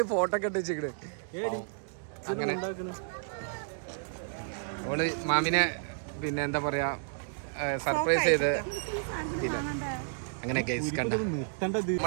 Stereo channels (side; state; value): left; silent; digital silence